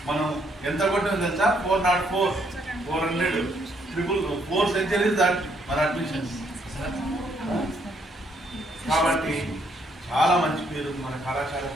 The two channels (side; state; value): both; normal; correlation 0.71